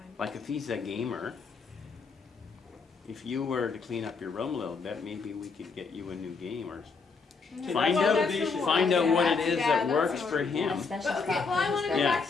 Like if he's a gamer, if you were to clean up your room a little bit, maybe we could get you a new game or find Well, out that's the find out one. what it Yeah, is that's that works what for we're him. Especially But okay, well, I want to go Yeah, back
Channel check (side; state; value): right; quieter; 4.8 dB